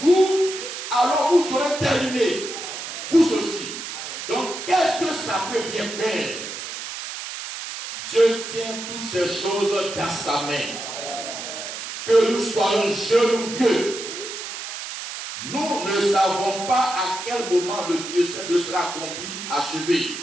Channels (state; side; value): noise; right; hiss, 8 dB below the sound